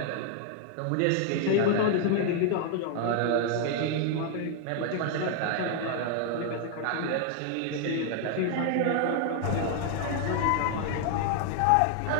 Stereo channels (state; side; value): different; both; correlation 0.00